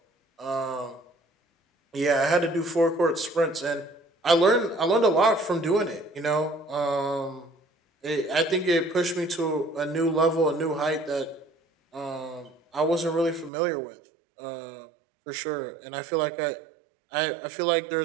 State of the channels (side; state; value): left; drops out; at 13.5 s